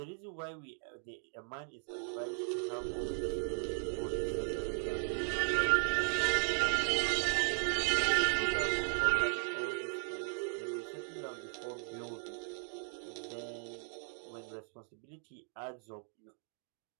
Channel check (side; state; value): left; silent; 53 dB below the other